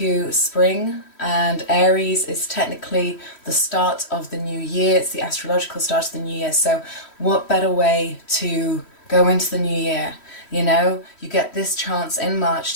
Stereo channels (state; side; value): late; right; 3.1 ms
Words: spring, and Aries is technically the start of the new year. It's the astrological start of the new year. So what better way to go into the new year? You know, you get this chance in March